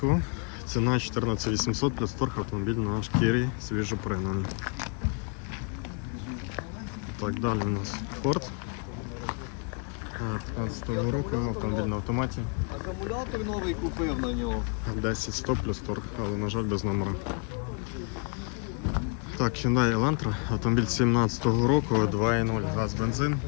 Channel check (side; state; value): right; quieter; 36.3 dB